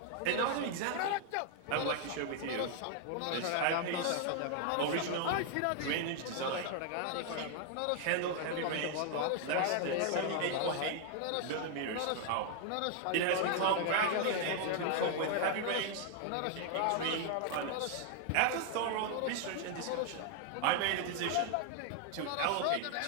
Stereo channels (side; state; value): both; different; correlation 0.00